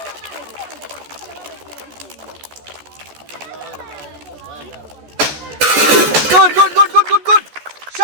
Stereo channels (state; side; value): late; left; 14 ms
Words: গুড গুড গুড গুড গুড গুড,